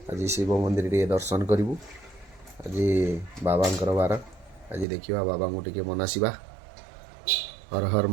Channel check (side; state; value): left; drops out; at 4.9 s